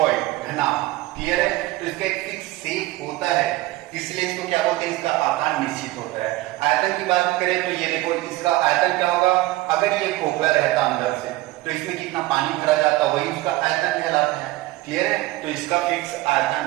घना। क्लियर है? तो इसका एक फिक्स शेप होता है, इसलिए इसको क्या बोलते हैं? इसका आकार निश्चित होता है। आयतन की बात करें तो ये देखो, इसका आयतन क्या होगा? अगर ये खोखला रहता अंदर से तो इसमें कितना पानी भरा जाता, वही उसका आयतन कहलाता है। क्लियर है? तो इसका फिक्स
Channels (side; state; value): left; quieter; 18.5 dB